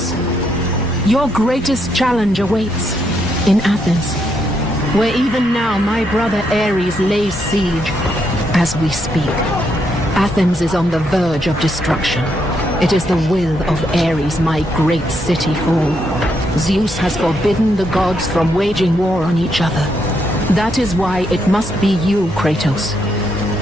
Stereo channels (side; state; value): both; normal; correlation 0.77